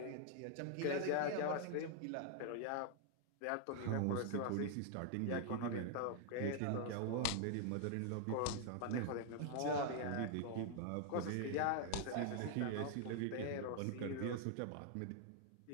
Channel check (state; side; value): different; both; correlation 0.00